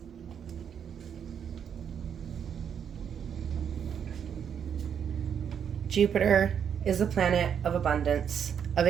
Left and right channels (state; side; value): quieter; left; 8.0 dB